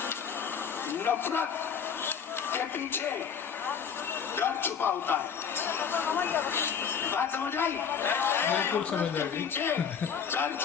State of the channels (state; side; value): quieter; right; 7.0 dB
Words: नफरत के पीछे डर छुपा होता है। बात समझ आई? बिल्कुल समझ आई। पीछे डर